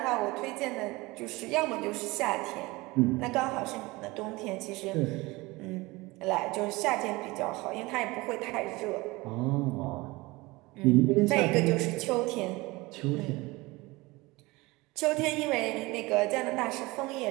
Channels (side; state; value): left; quieter; 22.3 dB